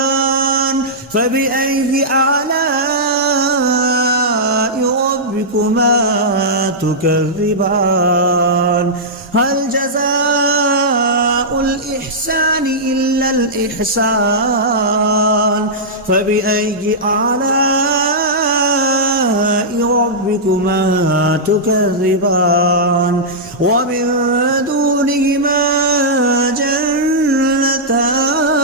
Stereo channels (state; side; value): normal; both; correlation -0.12